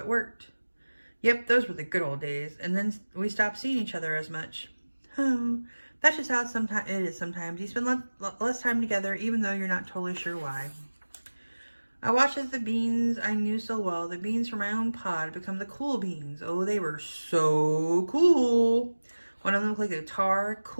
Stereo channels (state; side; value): inverted; both; correlation -1.00